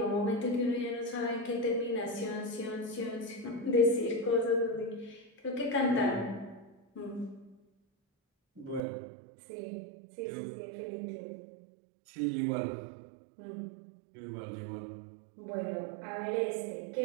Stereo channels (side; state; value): left; drops out; at 8.8 s